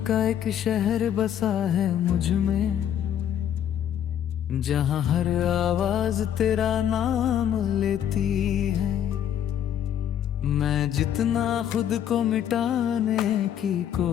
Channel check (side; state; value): right; quieter; 10.0 dB